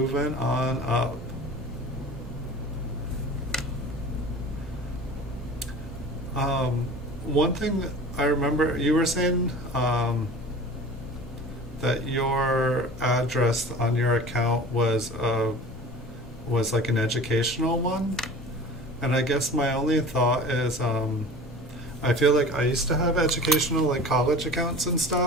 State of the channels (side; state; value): both; normal; correlation 0.40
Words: on up. One thing I remember, you were saying that your address on your account was like an educational one, and I guess my only thought is I feel like I used to have educational, like college accounts and